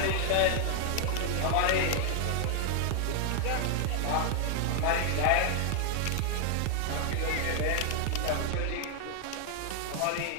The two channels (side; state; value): both; different; correlation 0.00